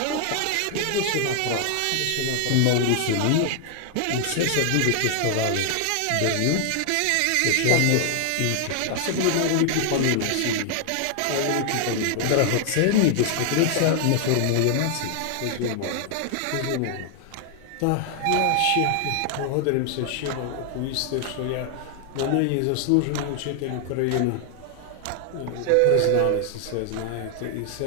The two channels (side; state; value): both; different; correlation 0.00